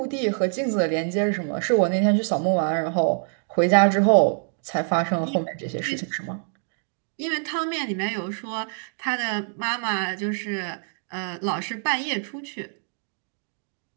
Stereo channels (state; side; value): silent; left; 62 dB below the other